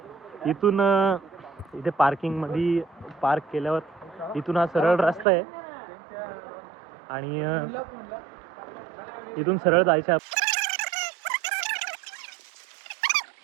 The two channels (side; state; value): left; drops out; at 5.2 s